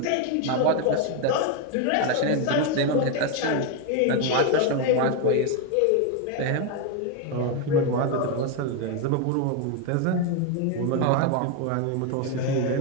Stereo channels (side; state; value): both; different; correlation 0.02